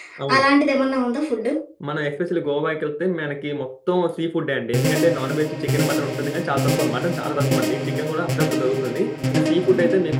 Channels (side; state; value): both; identical; correlation 1.00